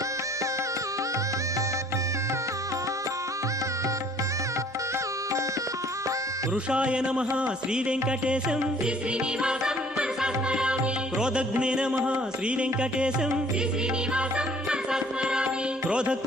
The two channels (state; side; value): normal; both; correlation 0.56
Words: వృషాయ నమః శ్రీ వెంకటేశం శ్రీ శ్రీనివాసం మనసా స్మరామి. క్రోధగ్నే నమః శ్రీ వెంకటేశం శ్రీ శ్రీనివాసం మనసా స్మరామి.